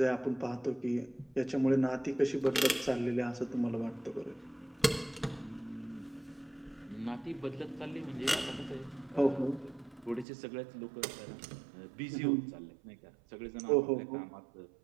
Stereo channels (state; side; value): drops out; left; at 10.2 s